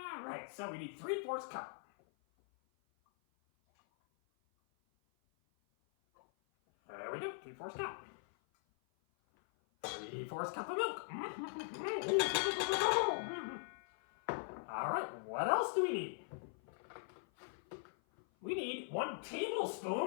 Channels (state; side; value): silent; right; 51 dB below the other